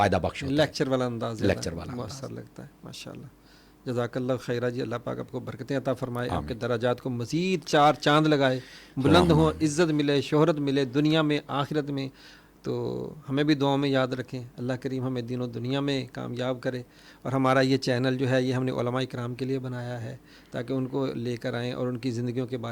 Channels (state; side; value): identical; both; correlation 1.00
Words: بخش ہوتا ہے، لیکچر والا انداز، لیکچر والا مؤثر لگتا ہے۔ ماشاءاللہ، جزاک اللہ خیرہ جی، اللہ پاک آپ کو برکتیں عطا فرمائے، آپ کے درجات کو مزید چار چاند لگائے، بلند ہوں، عزت ملے، شہرت ملے دنیا میں آخرت میں۔ تو ہمیں بھی دعاؤں میں یاد رکھیں، اللہ کریم ہمیں دین و دنیا میں کامیاب کرے۔ اور ہمارا یہ چینل جو ہے یہ ہم نے علماء کرام کے لیے بنایا ہے تاکہ ان کو لے کر آئیں اور ان کی زندگیوں کے